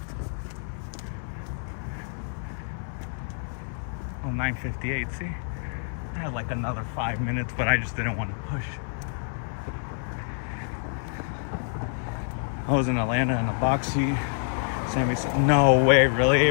Oh, 9:58, see? I had like another 5 minutes, but I just didn't want to push. I was in Atlanta in the box seat. Sammy said, no way, really,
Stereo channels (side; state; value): right; silent; 60 dB below the other